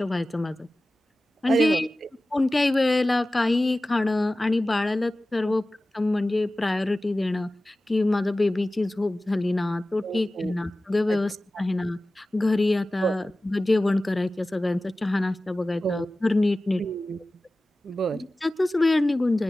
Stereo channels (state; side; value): normal; both; correlation 0.96